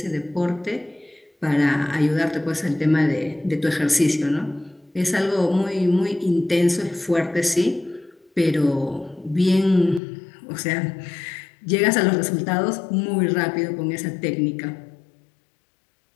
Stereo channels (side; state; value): right; drops out; at 10.0 s